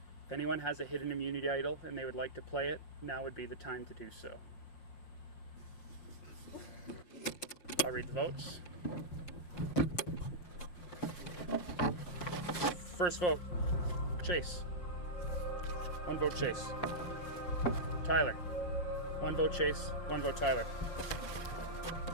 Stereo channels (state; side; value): late; right; 5.6 ms